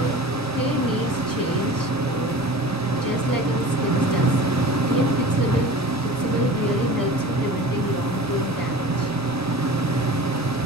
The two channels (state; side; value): noise; left; rumble, 23 dB below the sound